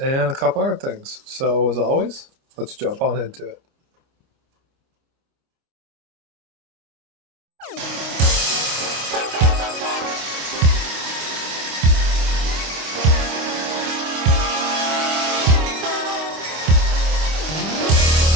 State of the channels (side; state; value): left; late; 25 ms